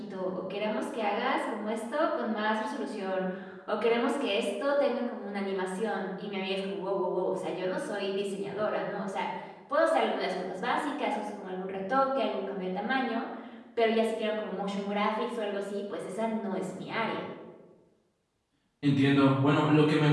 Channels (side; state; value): both; identical; correlation 1.00